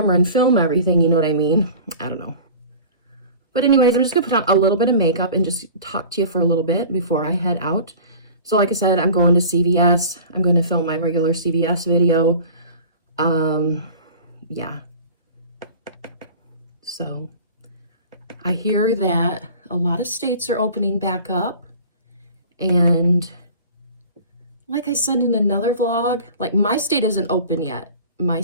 and film everything, you know what I mean? I don't know. But anyways, I'm just going to put on a little bit of makeup and just talk to you for a little bit before I head out. So like I said, I'm going to CVS. I'm going to film my regular CVS video. Yeah. So I hear that a lot of states are opening back up. And like I said in another vlog, like my state isn't open yet. My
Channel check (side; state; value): both; inverted; correlation -0.41